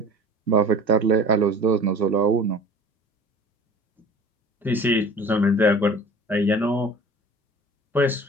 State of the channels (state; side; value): normal; both; correlation 0.42